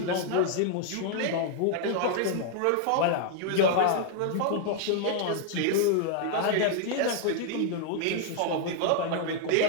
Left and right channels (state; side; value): different; both; correlation -0.01